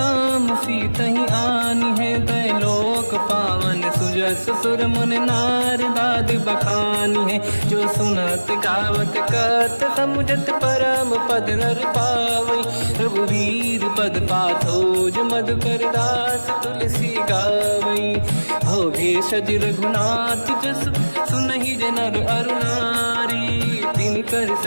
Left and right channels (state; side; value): inverted; both; correlation -1.00